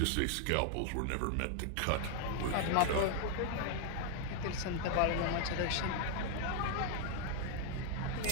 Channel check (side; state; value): both; different; correlation 0.00